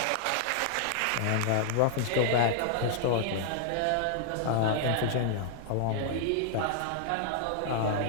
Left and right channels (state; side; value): different; both; correlation -0.01